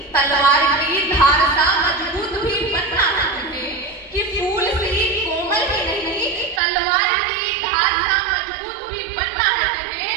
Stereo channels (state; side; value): drops out; left; at 6.6 s